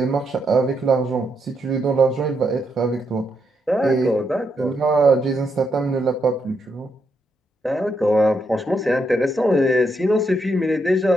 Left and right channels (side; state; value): both; normal; correlation 0.80